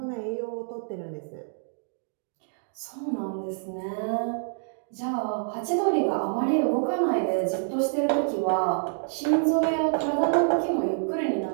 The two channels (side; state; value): left; silent; digital silence